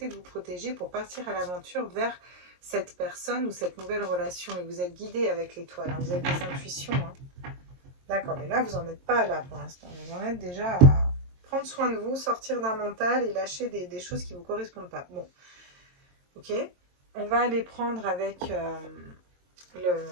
de vous protéger pour partir à l'aventure vers cette personne ou cette nouvelle relation. Et vous êtes guidé avec l'étoile, hein. Vous avez des intuitions. Hein. D'accord, mais là, vous n'en êtes pas là pour l'instant. Vous en êtes déjà à prendre soin de vous, sortir d'un mental et lâcher des choses qui ne vous correspondent pas. Bon, ok. On va aller prendre avec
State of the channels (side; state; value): left; late; 22 ms